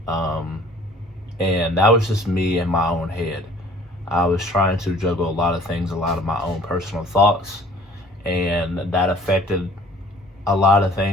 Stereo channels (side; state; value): both; normal; correlation 0.52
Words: And that was just me in my own head. I was trying to juggle a lot of things, a lot of my own personal thoughts, and that affected a lot of